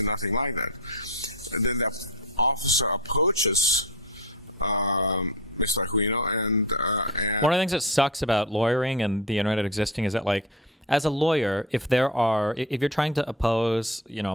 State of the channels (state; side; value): normal; both; correlation 0.26